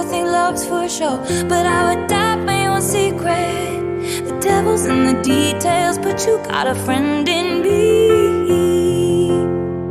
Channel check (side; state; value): both; identical; correlation 1.00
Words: think love's for show, but I would die for your secret. The devil's in the details, but you got a friend in me.